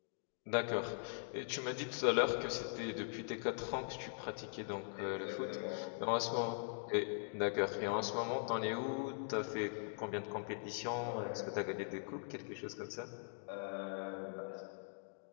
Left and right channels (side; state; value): right; silent; digital silence